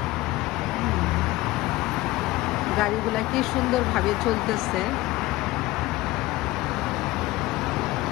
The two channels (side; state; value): right; quieter; 18.8 dB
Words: গাড়িগুলা কি সুন্দরভাবে চলতেছে,